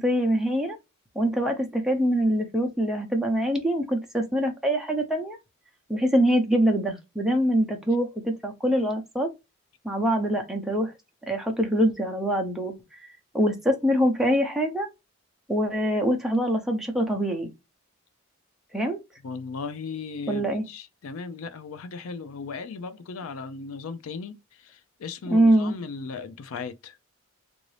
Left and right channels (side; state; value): both; normal; correlation 0.72